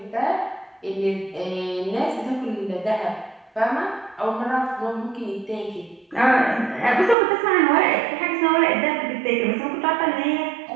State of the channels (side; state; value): left; drops out; at 7.2 s